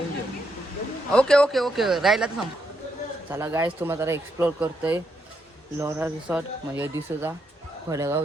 ओके राहिला तर सांग. चला गाईज तुम्हाला जरा एक्सप्लोर करतोय लोरा रिसॉर्ट म्हणजे दिसूचा फडेगाव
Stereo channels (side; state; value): both; normal; correlation 0.80